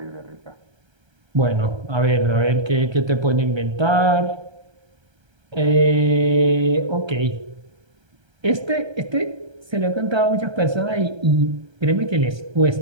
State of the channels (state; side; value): late; left; 1.3 ms